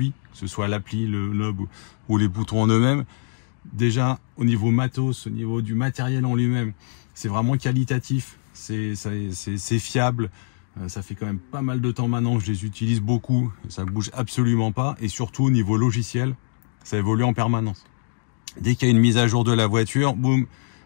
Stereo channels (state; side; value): silent; right; digital silence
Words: que ce soit l'appli, le knob ou les boutons en eux-mêmes, déjà au niveau matos, au niveau du matériel en lui-même, c'est vraiment qualitatif, c'est fiable. Ça fait quand même pas mal de temps maintenant que je les utilise beaucoup, ça bouge absolument pas, et surtout au niveau logiciel, ça évolue en permanence. Dès qu'il y a une mise à jour de la voiture, boum,